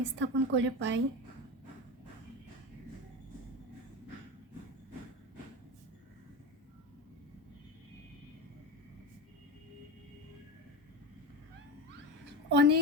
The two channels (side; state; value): both; normal; correlation 0.23